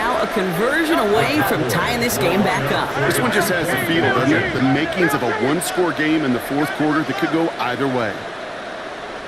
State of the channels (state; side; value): identical; both; correlation 1.00